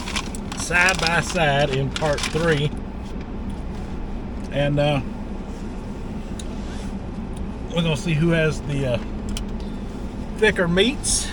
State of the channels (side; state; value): both; identical; correlation 1.00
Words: side by side in part 3. And we're going to see who has the thicker meats.